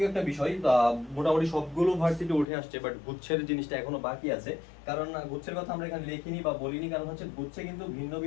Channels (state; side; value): drops out; right; at 2.5 s